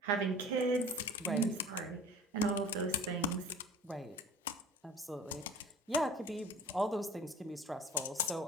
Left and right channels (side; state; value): both; normal; correlation 0.42